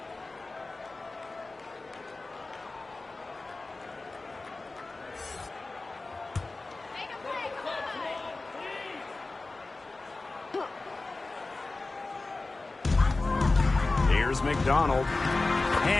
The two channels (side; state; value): right; quieter; 3.4 dB